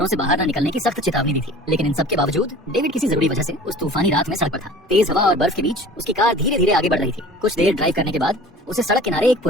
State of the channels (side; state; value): both; normal; correlation 0.44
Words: से बाहर न निकलने की सख्त चेतावनी दी थी, लेकिन इन सब के बावजूद डेविड किसी जरूरी वजह से उस तूफानी रात में सड़क पर था। तेज हवा और बर्फ के बीच उसकी कार धीरे धीरे आगे बढ़ रही थी। कुछ देर ड्राइव करने के बाद उसे सड़क किनारे एक